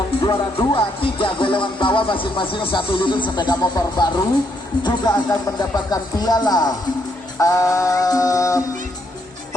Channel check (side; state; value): both; normal; correlation 0.75